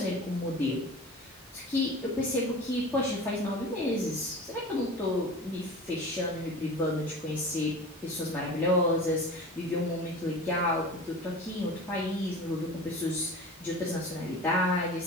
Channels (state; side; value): normal; both; correlation 0.36